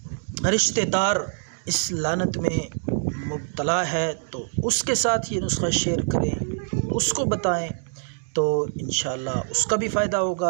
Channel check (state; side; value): silent; left; digital silence